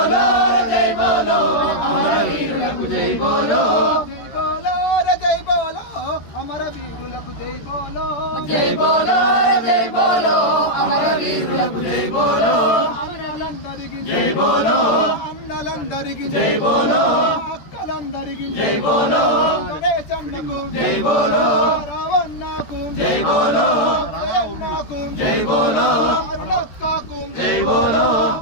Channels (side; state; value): right; late; 13 ms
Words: జై బోలో, అమరవీరులకు జై బోలో, జై బోలో జై బోలో, అమరవీరులకు జై బోలో, జై బోలో జై బోలో, అమరవీరులకు జై బోలో, అన్నలందరికీ జై బోలో, అన్నలందరికీ జై బోలో, అక్కలందరికీ జై బోలో, గణేశన్నకు జై బోలో, రావణ అన్నకు జై బోలో అన్నకు జై బోలో అరుణక్కకు జై బోలో